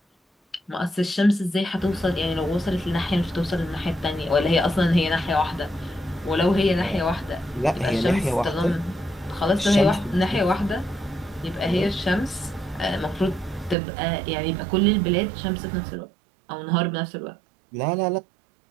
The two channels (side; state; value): left; drops out; at 13.8 s